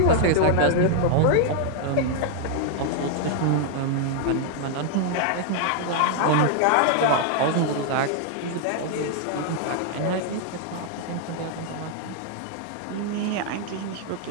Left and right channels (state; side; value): different; both; correlation 0.00